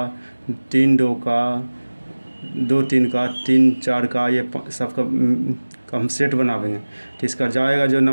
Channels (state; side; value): inverted; both; correlation -1.00